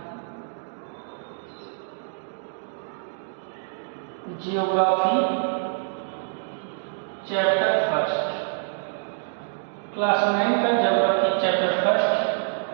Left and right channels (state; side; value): silent; left; digital silence